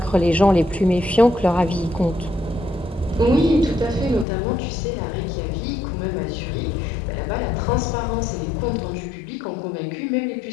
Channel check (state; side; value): drops out; right; at 4.2 s